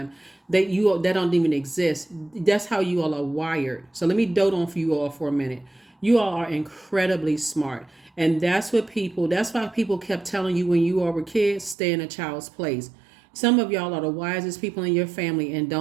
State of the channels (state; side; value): drops out; left; at 11.8 s